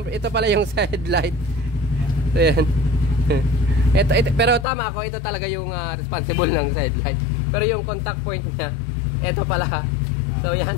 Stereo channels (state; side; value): drops out; right; at 4.7 s